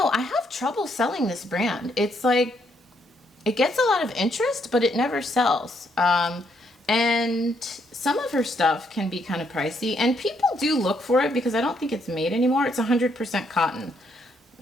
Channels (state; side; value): normal; both; correlation 0.74